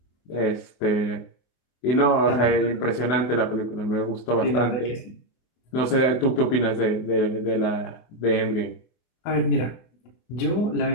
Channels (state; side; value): late; right; 24 ms